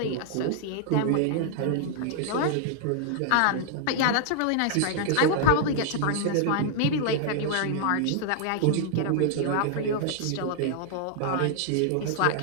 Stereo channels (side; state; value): both; different; correlation 0.00